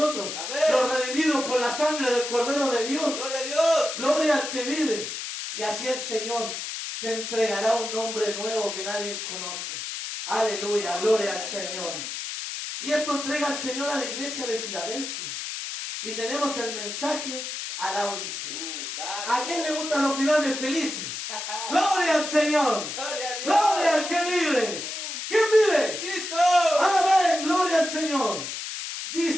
Amén. los redimidos por la sangre del Cordero de Dios. Gloria a Dios. Gloria al que vive. Y así el Señor te entregará un nombre nuevo que nadie conoce. Aleluya, gloria al Señor. Y esto entrega el Señor a la iglesia de Filadelfia. Y tenemos el mensaje a la Odisea. ¿A quién le gustan los finales felices? Gloria al Señor. Gloria a Dios. Gloria al que vive. ¿Quién vive? Cristo. Amén, gloria al Señor.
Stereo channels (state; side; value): noise; left; hiss, 6 dB below the sound